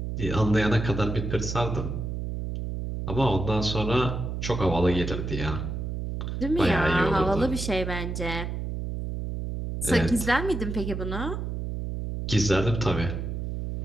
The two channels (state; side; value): noise; right; hum, 4 dB below the sound